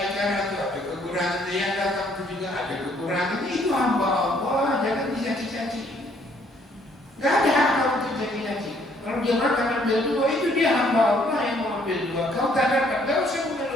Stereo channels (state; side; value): normal; both; correlation 0.65